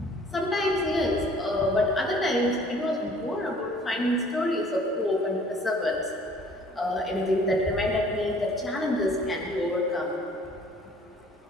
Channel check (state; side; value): normal; both; correlation 0.54